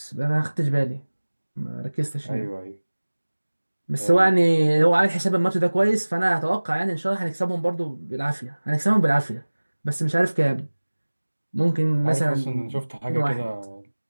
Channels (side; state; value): both; inverted; correlation -1.00